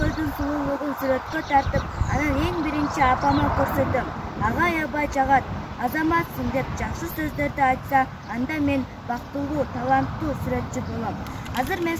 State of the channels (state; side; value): identical; both; correlation 1.00